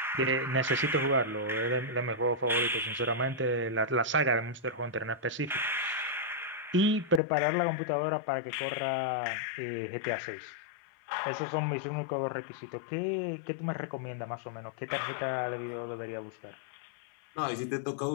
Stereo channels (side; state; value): right; drops out; at 7.2 s